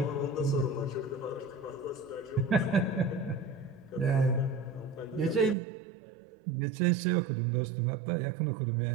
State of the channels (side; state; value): left; drops out; at 5.6 s